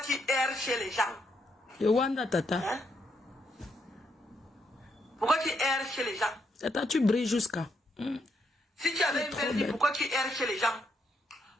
erres chez les gens? Le Wanda, Tata. Hein? Pourquoi tu erres chez les gens? Tata, tu brilles jusqu'à. Si tu avais une belle vie, pourquoi tu erres chez les gens?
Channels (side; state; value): both; normal; correlation 0.77